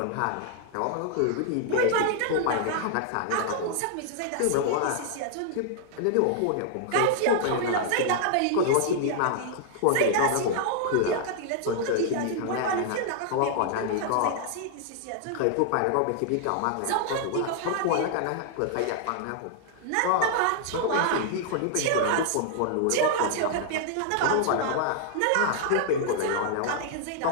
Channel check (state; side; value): different; both; correlation -0.01